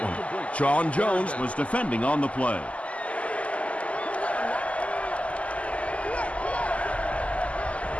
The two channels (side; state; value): right; late; 0.065 ms